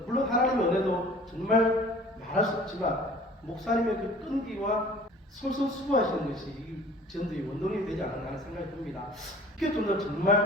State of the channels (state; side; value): normal; both; correlation 0.49